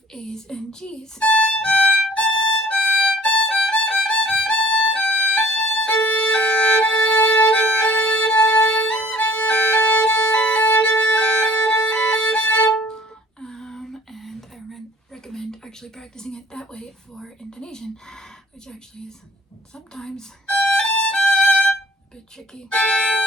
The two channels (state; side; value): normal; both; correlation 0.54